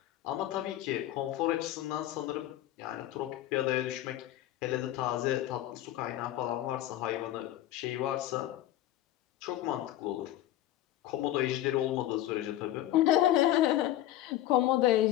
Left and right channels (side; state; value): right; quieter; 13.7 dB